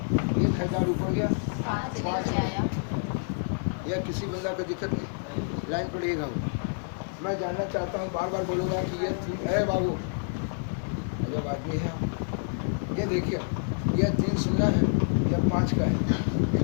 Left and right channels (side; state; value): right; silent; 59 dB below the other